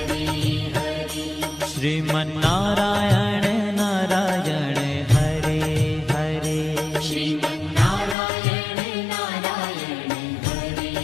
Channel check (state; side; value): drops out; right; at 8.2 s